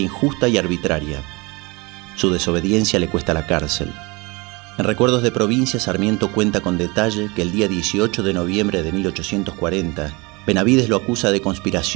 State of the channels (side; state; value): left; quieter; 26.4 dB